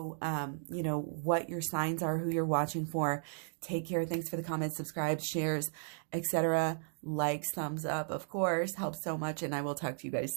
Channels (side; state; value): left; silent; digital silence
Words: what your signs are, who you're watching for. Take care. Thanks for the comments, subscribe, shares, etc. Likes, thumbs up, of course, helps so much, and I will talk to you